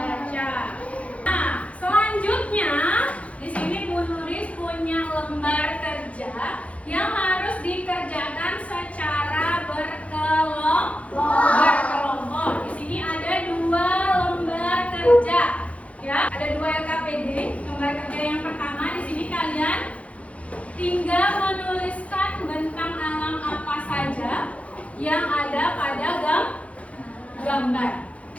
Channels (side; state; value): right; late; 0.064 ms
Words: Nah, selanjutnya di sini Bu Nuris punya lembar kerja yang harus dikerjakan secara berkelompok. Di sini ada 2 lembar kerja. Ya, ada 2 LKPD. Lembar kerja yang pertama di sini kalian tinggal menuliskan bentang alam apa saja yang ada pada gambar.